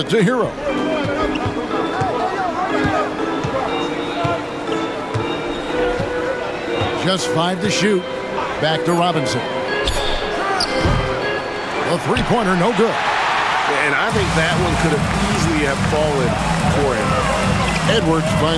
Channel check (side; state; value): both; identical; correlation 1.00